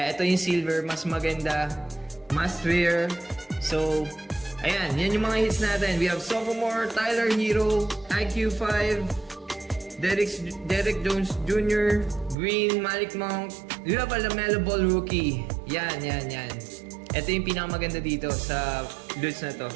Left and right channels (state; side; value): drops out; left; at 12.4 s